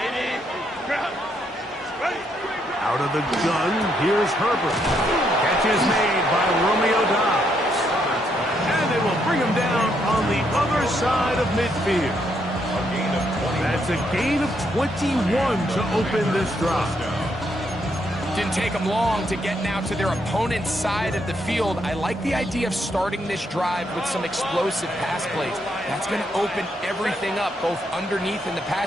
Out of the gun, here's Herbert. Catch is made by Romeo Doubs. And they will bring him down on the other side of midfield. That's a gain of 21 to open this drive. Didn't take them long to get now to their opponent's side of the field. I like the idea of starting this drive with some explosive pass plays. That's going to open everything up, both underneath in the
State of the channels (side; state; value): both; normal; correlation 0.75